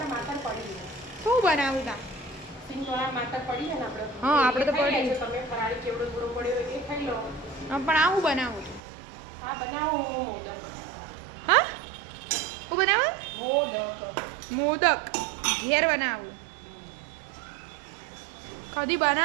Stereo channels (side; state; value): left; drops out; at 8.8 s